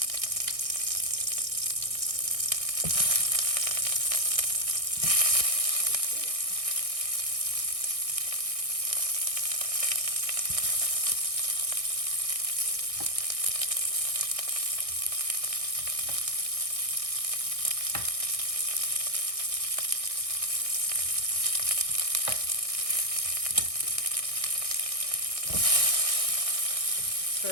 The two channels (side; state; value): left; late; 1.6 ms